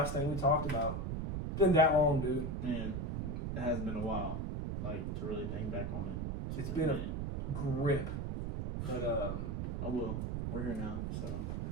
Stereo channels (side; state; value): right; noise; rumble, 2 dB below the sound